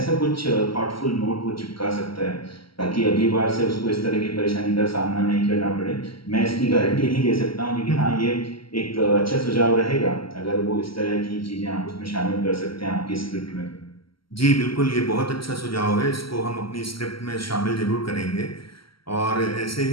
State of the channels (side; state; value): right; late; 0.74 ms